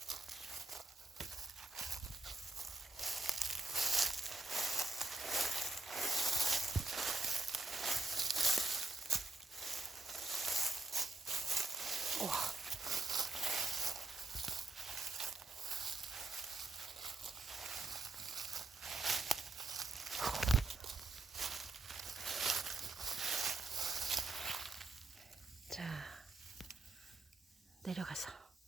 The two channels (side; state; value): left; quieter; 3.2 dB